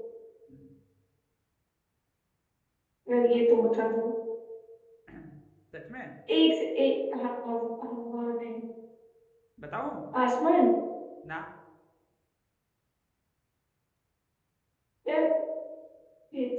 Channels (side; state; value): both; identical; correlation 1.00